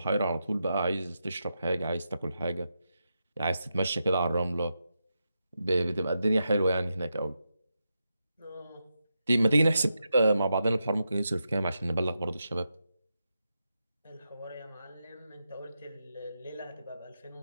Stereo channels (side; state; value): both; inverted; correlation -0.87